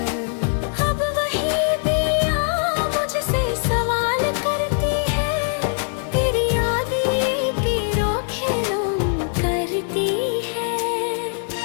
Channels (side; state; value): right; silent; digital silence